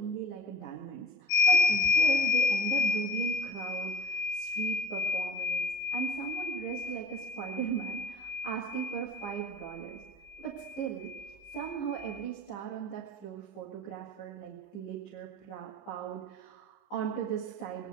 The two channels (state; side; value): late; right; 15 ms